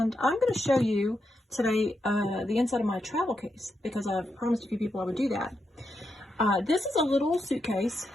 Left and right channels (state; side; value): normal; both; correlation 0.84